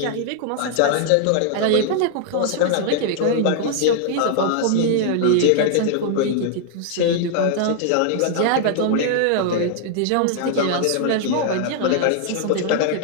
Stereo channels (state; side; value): different; both; correlation 0.00